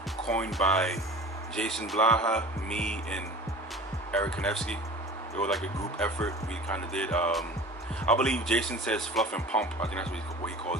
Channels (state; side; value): normal; both; correlation 0.40